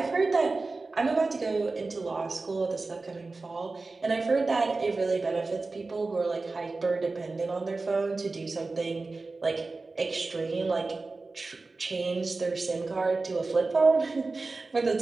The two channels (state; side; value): quieter; left; 3.6 dB